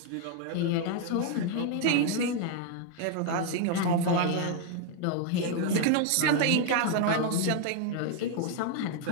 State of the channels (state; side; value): different; both; correlation 0.00